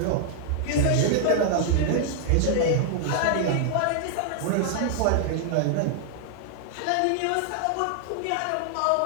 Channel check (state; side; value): different; both; correlation 0.00